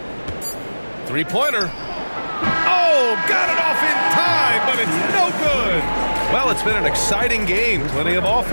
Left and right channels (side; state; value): both; inverted; correlation -1.00